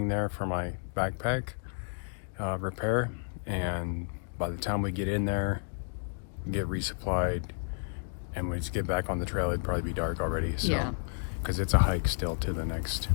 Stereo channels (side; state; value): right; silent; digital silence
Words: there for my backpack repair. And by the time we get in there, get resupplied, and we just get back on the trail, it'd probably be dark already. So, because it's a hike still to the next